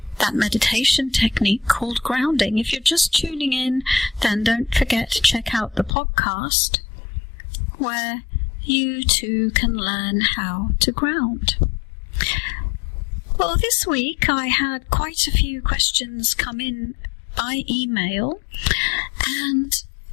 that meditation technique called grounding. If you're just tuning in, then don't forget to check out the podcast where you too can learn how to ground. Well, this week I had quite a few questions come in by email, and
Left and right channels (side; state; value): right; drops out; at 5.9 s